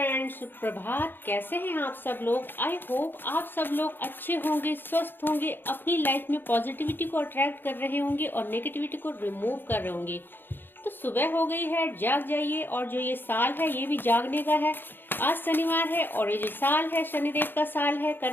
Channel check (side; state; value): right; late; 0.097 ms